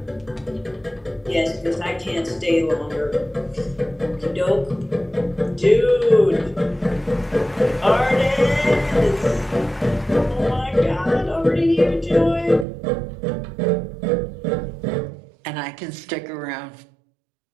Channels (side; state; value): left; drops out; at 12.7 s